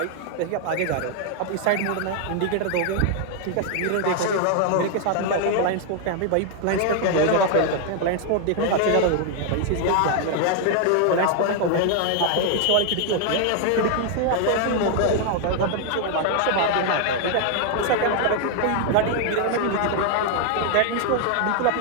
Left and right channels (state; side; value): different; both; correlation 0.00